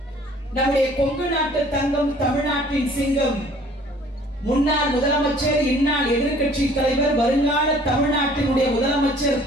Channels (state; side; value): normal; both; correlation 0.54